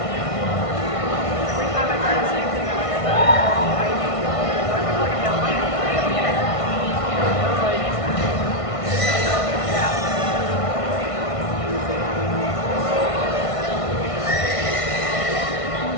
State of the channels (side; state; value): right; late; 1.5 ms